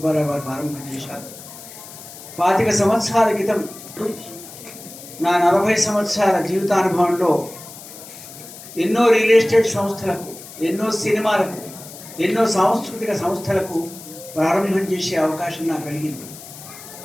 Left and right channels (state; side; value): noise; left; hiss, 16 dB below the sound